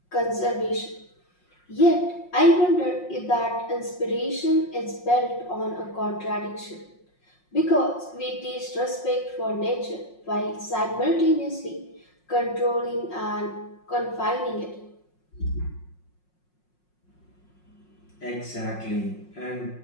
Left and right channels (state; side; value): late; right; 5.5 ms